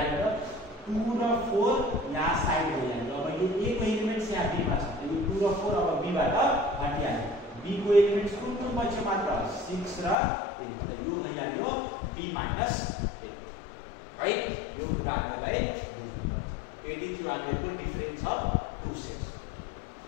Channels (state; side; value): drops out; right; at 10.2 s